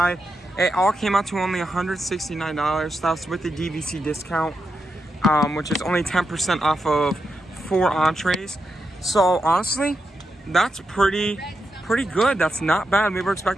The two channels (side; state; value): both; normal; correlation 0.85